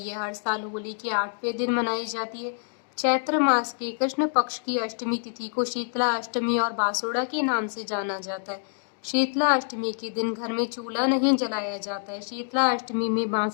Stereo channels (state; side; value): silent; right; 60 dB below the other